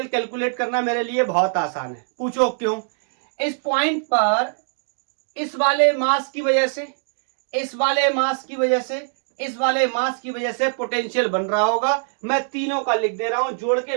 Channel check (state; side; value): silent; left; digital silence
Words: कैलकुलेट करना मेरे लिए बहुत आसान है। पूछो क्यों? इस पॉइंट पर इस वाले मास की वजह से, इस वाले मास की वजह से, इस वाले मास की वजह से पोटेंशियल बन रहा होगा। मैं तीनों का लिख दे रहा हूं, जोड़